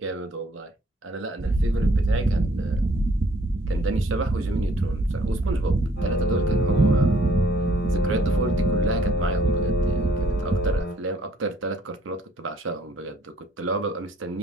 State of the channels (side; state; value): both; normal; correlation 0.63